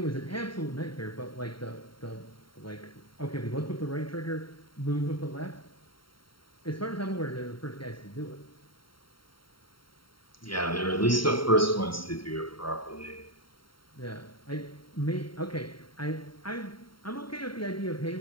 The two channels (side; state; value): right; late; 0.73 ms